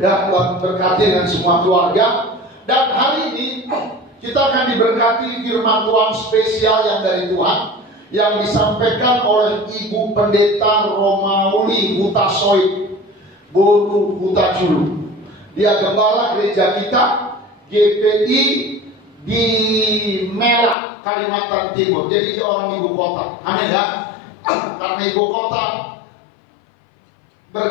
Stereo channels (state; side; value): drops out; right; at 20.8 s